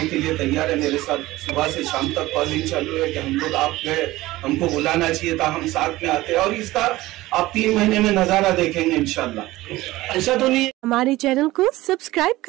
के लिए तैयार है मेरे साथ। सुबह से शाम तक कॉलिंग चालू है कि हम लोग आप गए, हमको बुलाना चाहिए था, हम साथ में आते हैं। और इसका आप 3 महीने में नजारा देखेंगे इंशाल्लाह। ऐसा तो नहीं। हमारे चैनल को सब्सक्राइब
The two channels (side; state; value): left; quieter; 17.9 dB